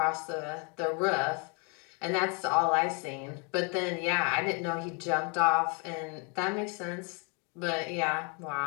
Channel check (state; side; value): quieter; right; 34.2 dB